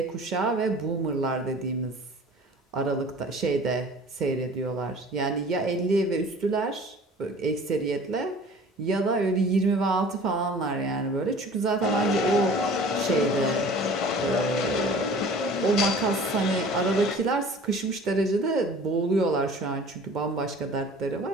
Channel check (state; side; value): normal; both; correlation 0.46